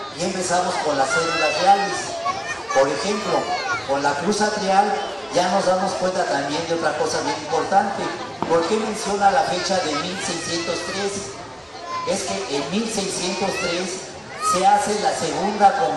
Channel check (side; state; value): both; identical; correlation 1.00